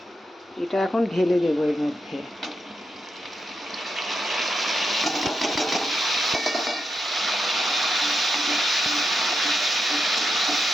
এটা এখন ঢেলে দেবো এর মধ্যে।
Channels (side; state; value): both; normal; correlation 0.85